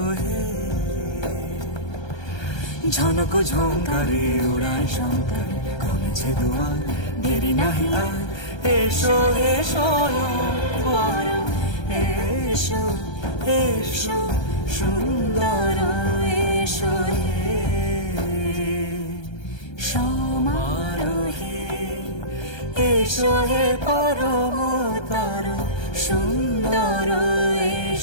হে। ঝনক ঝঙ্কারে উড়ায় শঙ্কর, কমেছে দুয়ার দেরি নাহি আর, এসো হে স্বয়ং পরম, এসো এসো সুন্দর, এসো হে সমারোহে। এসো হে পরমতর সুন্দর,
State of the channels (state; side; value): late; right; 1.3 ms